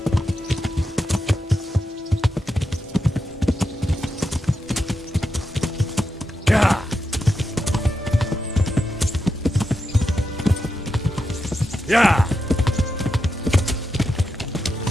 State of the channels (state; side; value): normal; both; correlation 0.87